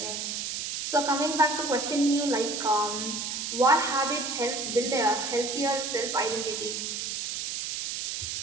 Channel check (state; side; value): noise; right; hiss, 3 dB below the sound